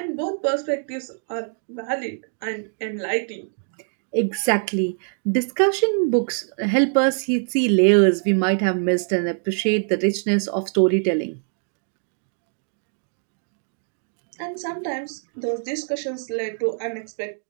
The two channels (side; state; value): left; silent; 63 dB below the other